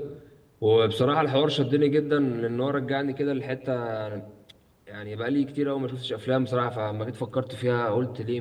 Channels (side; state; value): both; identical; correlation 1.00